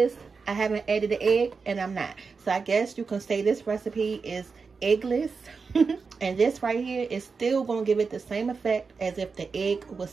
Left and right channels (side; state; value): left; quieter; 4.9 dB